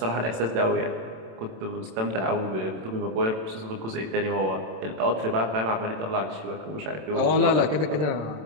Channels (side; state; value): left; late; 27 ms